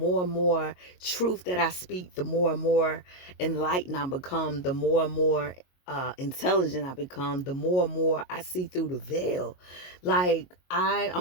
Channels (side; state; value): right; late; 22 ms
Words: and more truth that I speak, the more and more enlightened I become, the more and more intelligent I become, the more and more I see through the veil. Like